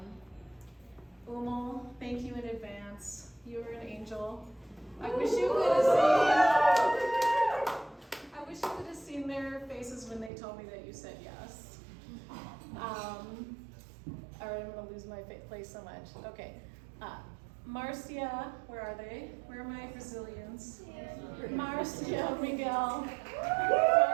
Umel, thank you in advance. You are an angel. I wish you could have seen their faces when they told me that you said yes. All right, I'm gonna lose my place so much. Okay. Marcia, where are they? Where are my Brazilians? Marcia, Miguel,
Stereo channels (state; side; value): drops out; left; at 10.3 s